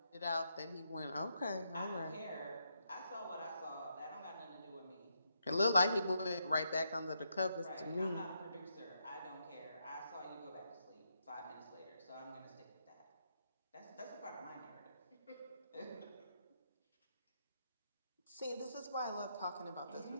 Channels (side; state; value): both; inverted; correlation -0.80